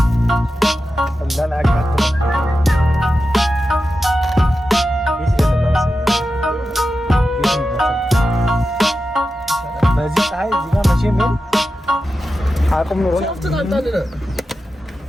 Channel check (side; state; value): both; normal; correlation 0.91